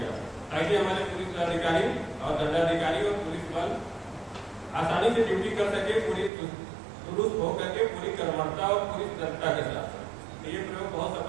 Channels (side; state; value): left; drops out; at 6.3 s